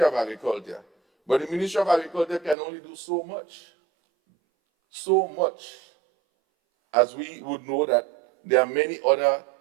of Agriculture, but the Ministry of Agriculture can only do so much. So much, as we would know that there are many other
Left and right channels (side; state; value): left; drops out; at 2.6 s